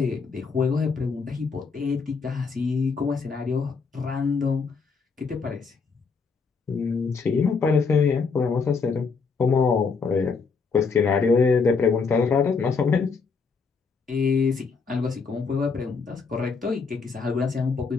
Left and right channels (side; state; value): right; quieter; 5.0 dB